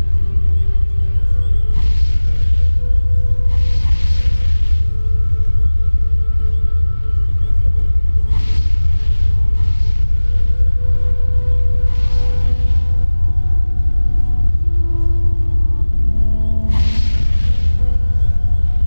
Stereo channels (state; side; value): inverted; both; correlation -1.00